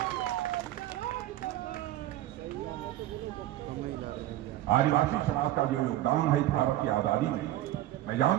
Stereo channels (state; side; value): quieter; left; 14.3 dB